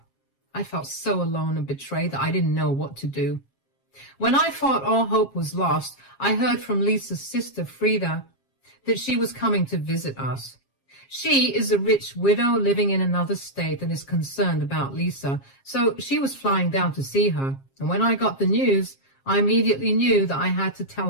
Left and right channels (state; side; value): late; right; 7.4 ms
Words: I felt so alone and betrayed that I didn't know what to do. When I thought all hope was lost, I heard from Lisa's sister, Frida, that she was coming to visit us. She is a rich widow living in another state and is concerned about Lisa, so she was flying down to see her. And when I got the news, I immediately knew that I had to tell